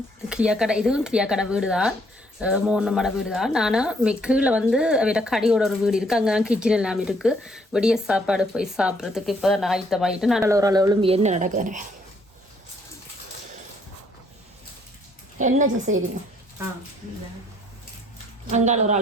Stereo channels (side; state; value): both; normal; correlation 0.67